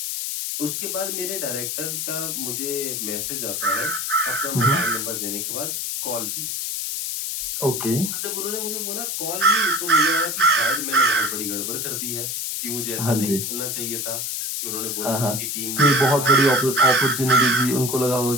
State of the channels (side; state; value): left; noise; hiss, 2 dB below the sound